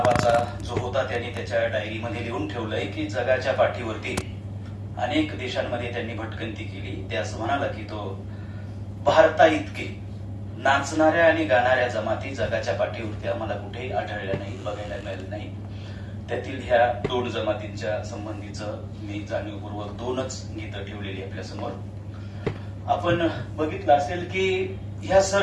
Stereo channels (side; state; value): both; identical; correlation 1.00